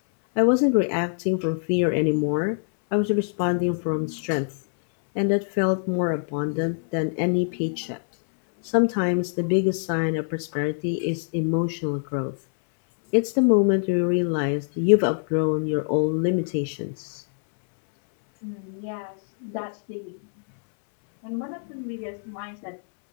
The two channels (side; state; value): right; silent; 62 dB below the other